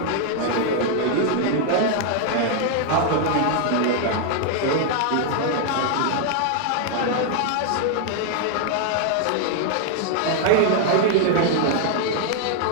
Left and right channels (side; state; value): both; different; correlation 0.00